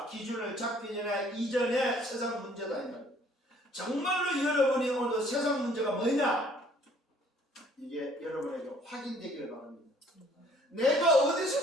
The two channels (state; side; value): normal; both; correlation 0.58